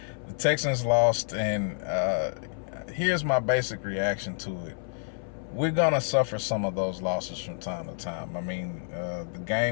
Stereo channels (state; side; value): silent; right; 59 dB below the other